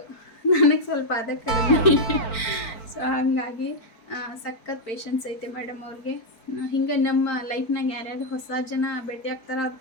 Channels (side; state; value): right; late; 4.5 ms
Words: ನನಗೆ ಸ್ವಲ್ಪ ಅದೇ ಕಲಿಬೇಕು. ಸೊ ಹಾಗಾಗಿ ಸಖತ್ ಪೇಷನ್ಸ್ ಐತೆ ಮೇಡಮ್ ಅವ್ರಿಗೆ. ಹಿಂಗೆ ನಮ್ಮ ಲೈಫ್ನಾಗ ಯಾರ್ಯಾರು ಹೊಸ ಜನ ಭೇಟಿ ಆಗ್ತಾರೋ ಅವ್ರ